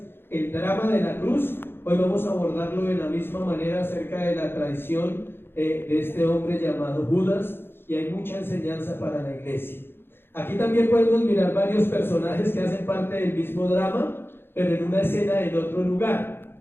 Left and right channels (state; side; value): late; right; 0.11 ms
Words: el drama de la cruz, hoy vamos a abordarlo de la misma manera acerca de la traición de este hombre llamado Judas, y hay mucha enseñanza para la iglesia. Aquí también podemos mirar varios personajes que hacen parte del mismo drama, pero en una escena en otro